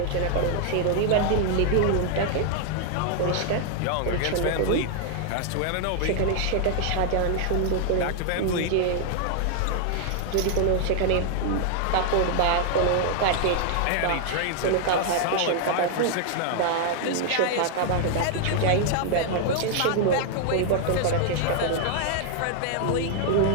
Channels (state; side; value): different; both; correlation 0.00